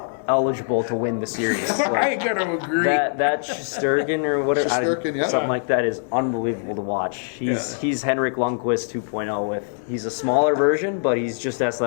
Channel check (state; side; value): silent; right; 64 dB below the other